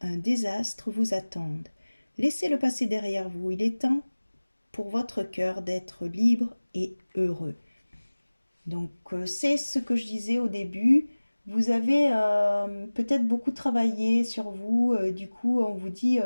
un désastre vous attendent. Laissez-le passer derrière vous. Il est temps pour votre cœur d'être libre et heureux. Donc, c'est ce que je disais au début. Vous avez peut-être beaucoup travaillé sur vous. Du coup, on vous dit,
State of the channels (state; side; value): inverted; both; correlation -1.00